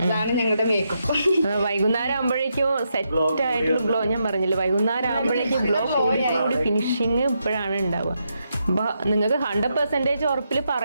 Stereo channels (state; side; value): inverted; both; correlation -0.82